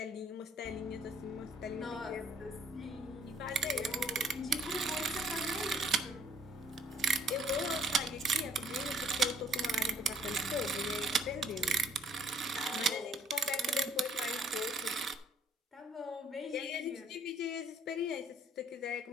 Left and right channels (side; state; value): both; normal; correlation 0.61